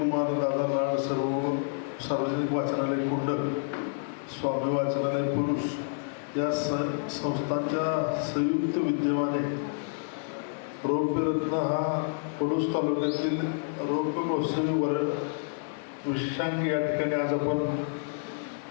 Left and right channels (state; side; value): silent; right; 59 dB below the other